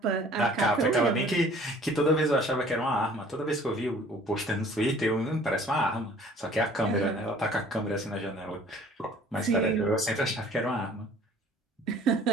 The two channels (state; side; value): normal; both; correlation 0.52